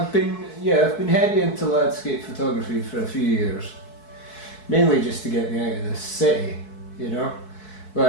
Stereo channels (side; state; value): right; late; 4.6 ms